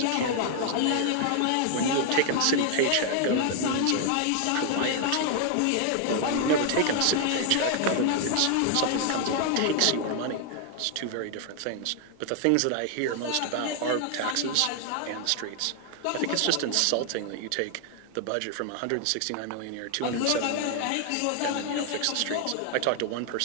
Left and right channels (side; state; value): both; different; correlation 0.00